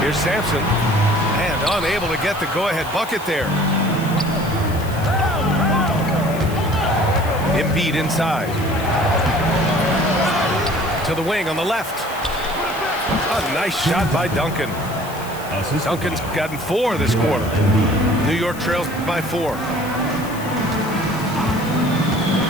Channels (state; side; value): noise; left; hiss, 16 dB below the sound